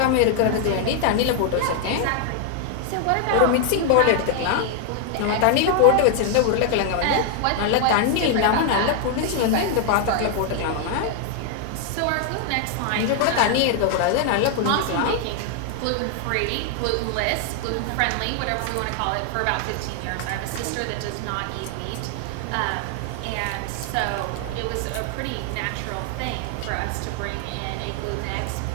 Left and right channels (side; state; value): both; different; correlation 0.00